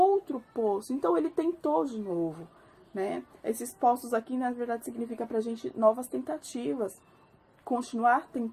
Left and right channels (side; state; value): both; identical; correlation 1.00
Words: poço. Então ele tentou de novo, né? Esses poços aqui, na verdade, significa pra gente novas tentativas. Continuar